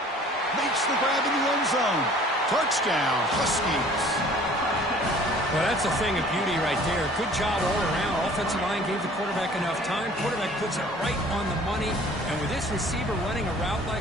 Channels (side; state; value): both; normal; correlation 0.51